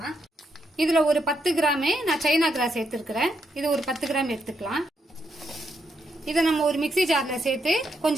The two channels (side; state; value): both; normal; correlation 0.79